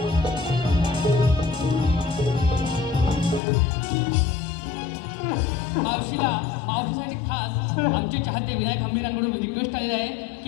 मावशीसाठी खास आमचे चाहते विनायक हंबीरांकडून रिक्वेस्ट आलेली आहे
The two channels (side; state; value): right; drops out; at 3.4 s